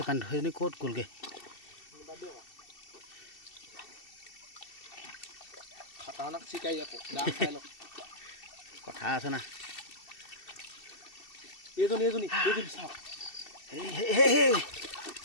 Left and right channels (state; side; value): late; right; 2.7 ms